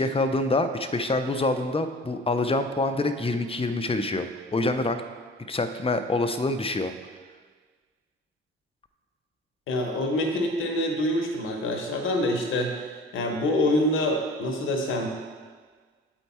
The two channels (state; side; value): normal; both; correlation 0.43